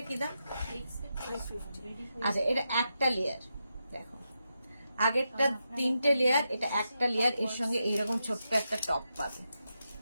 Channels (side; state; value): both; inverted; correlation -0.86